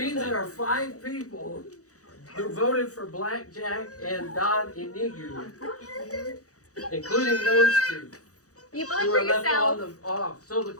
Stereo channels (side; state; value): right; late; 0.66 ms